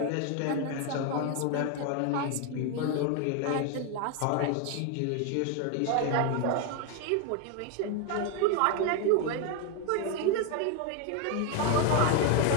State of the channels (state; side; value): different; both; correlation 0.01